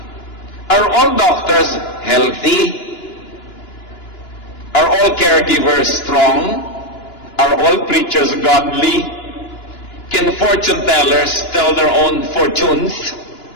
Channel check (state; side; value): late; right; 2.9 ms